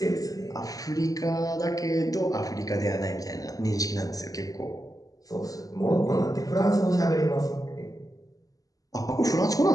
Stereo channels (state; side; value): late; right; 0.17 ms